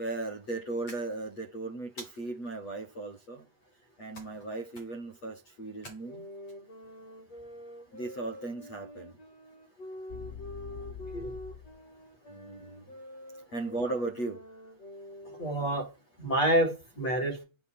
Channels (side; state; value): right; late; 8.2 ms